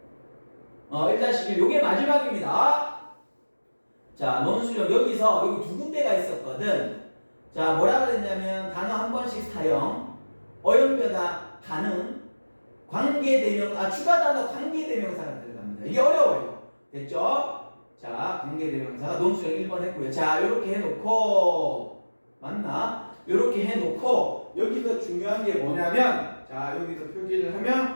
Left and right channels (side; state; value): both; inverted; correlation -1.00